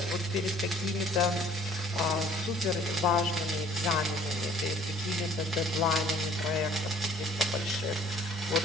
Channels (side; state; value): both; normal; correlation 0.55